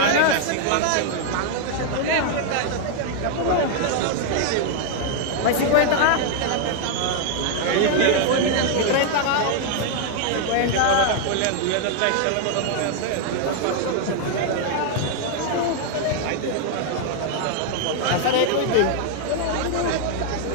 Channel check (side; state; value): both; different; correlation 0.00